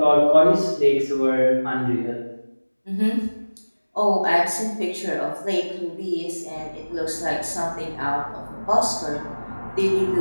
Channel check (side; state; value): both; inverted; correlation -1.00